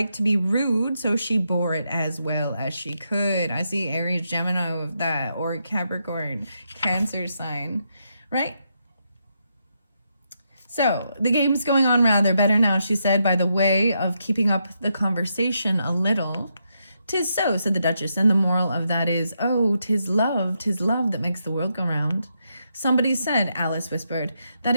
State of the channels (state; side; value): inverted; both; correlation -0.81